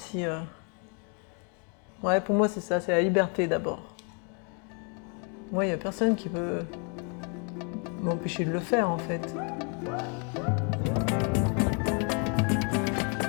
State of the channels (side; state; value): right; quieter; 37.8 dB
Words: Ouais, pour moi c'est ça, c'est la liberté d'abord. Moi, il n'y a personne qui peut m'empêcher de le faire, en fait.